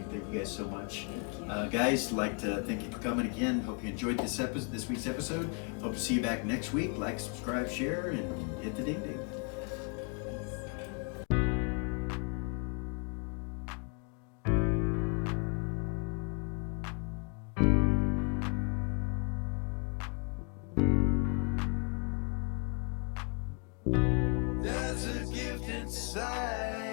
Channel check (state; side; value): quieter; right; 37.1 dB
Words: Thank you guys so much. Guys, like to thank you for coming again. Hope you enjoyed this week's episode. Hope to see you back next week. Like, subscribe, share, and hit the ding ding. There's a gift